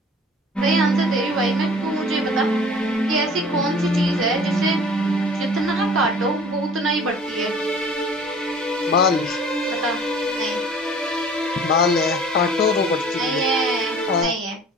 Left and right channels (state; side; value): normal; both; correlation 0.48